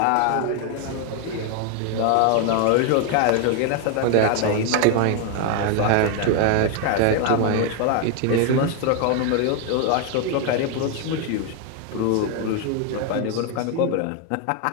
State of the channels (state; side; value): different; both; correlation 0.01